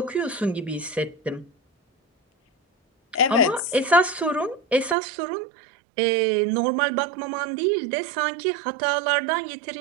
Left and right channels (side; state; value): left; drops out; at 5.0 s